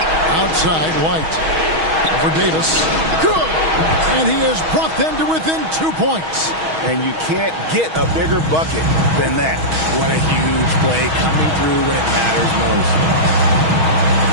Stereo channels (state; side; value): late; left; 6.3 ms